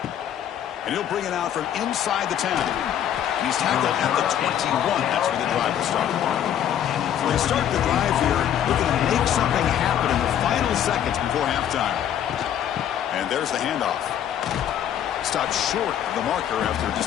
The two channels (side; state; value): right; quieter; 10.1 dB